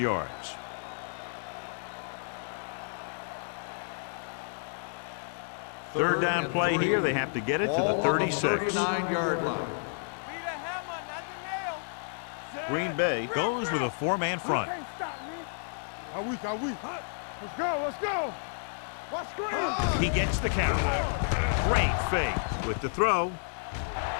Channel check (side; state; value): right; silent; digital silence